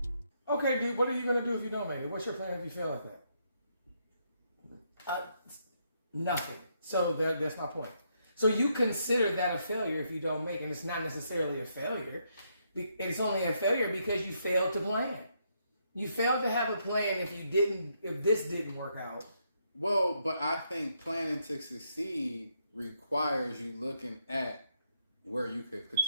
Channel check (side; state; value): both; inverted; correlation -0.76